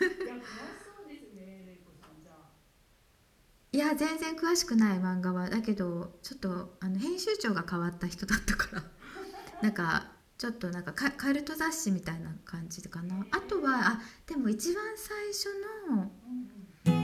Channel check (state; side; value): identical; both; correlation 1.00